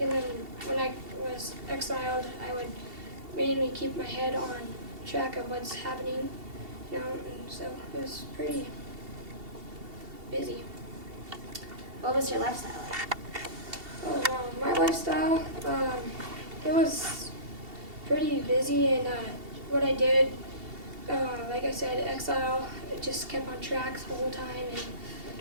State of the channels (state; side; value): late; left; 2.7 ms